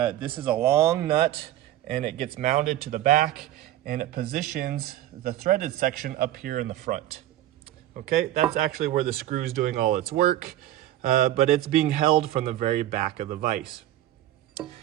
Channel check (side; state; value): left; quieter; 13.6 dB